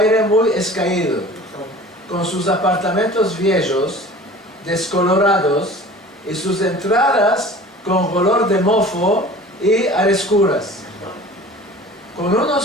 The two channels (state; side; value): normal; both; correlation 0.42